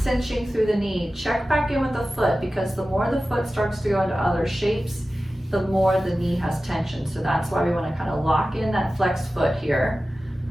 cinching through the knee, check back in with the foot, because the more the foot starts to go into other shapes, the more the knee has tension. So that's why we want to kind of lock in that flexed foot here.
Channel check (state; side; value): normal; both; correlation 0.95